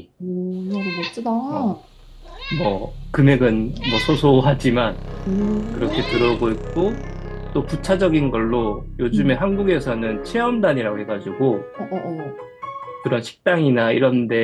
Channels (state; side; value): identical; both; correlation 1.00